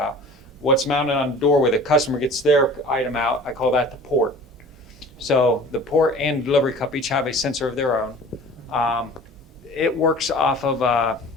What's mounted on the door where the customer gets their item out, I call that the port. So the port and delivery cup each have a sensor of their own. It works off of,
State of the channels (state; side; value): normal; both; correlation 0.43